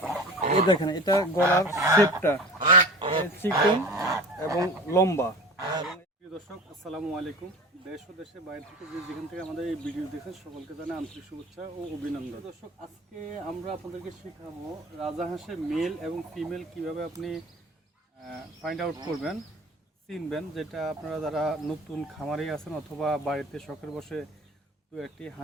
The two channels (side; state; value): both; normal; correlation 0.36